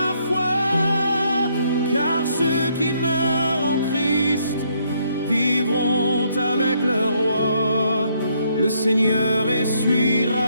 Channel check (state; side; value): inverted; both; correlation -0.71